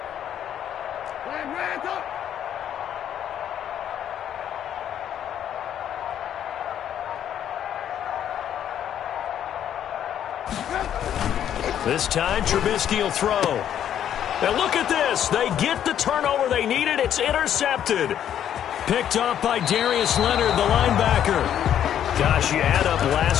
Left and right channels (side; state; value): right; quieter; 10.1 dB